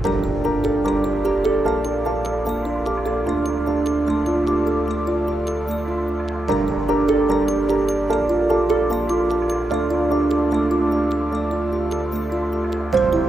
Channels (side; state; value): both; normal; correlation 0.88